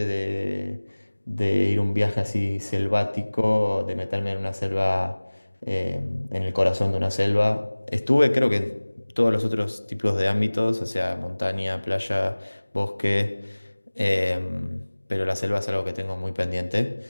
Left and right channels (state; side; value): inverted; both; correlation -1.00